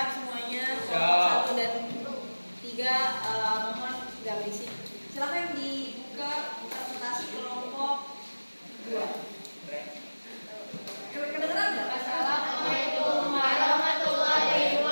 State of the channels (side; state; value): both; inverted; correlation -1.00